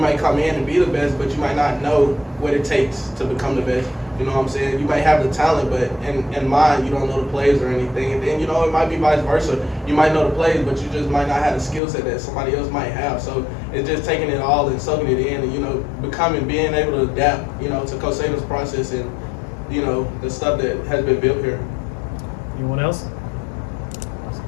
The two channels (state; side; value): drops out; right; at 11.8 s